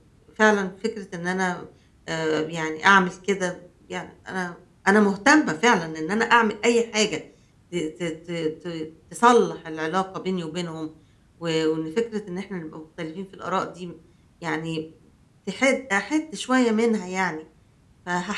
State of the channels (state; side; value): identical; both; correlation 1.00